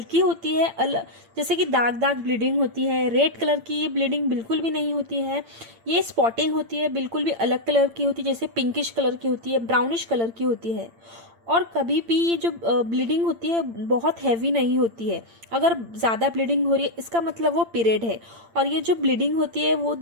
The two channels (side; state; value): left; late; 8.8 ms